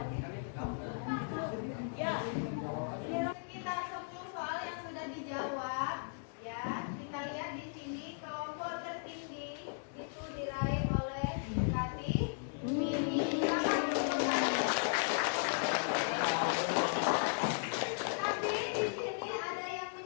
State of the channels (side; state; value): right; silent; digital silence